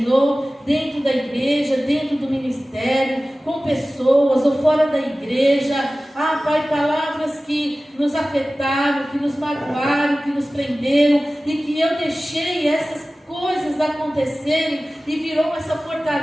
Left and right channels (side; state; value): both; normal; correlation 0.97